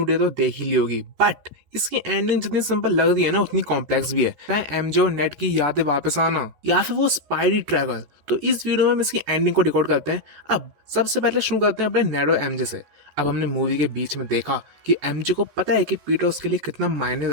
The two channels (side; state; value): left; late; 14 ms